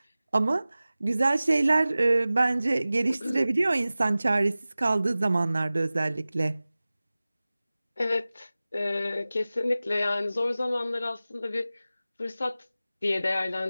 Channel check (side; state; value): both; inverted; correlation -0.97